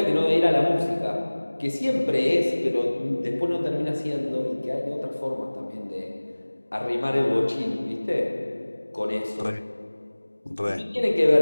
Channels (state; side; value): inverted; both; correlation -1.00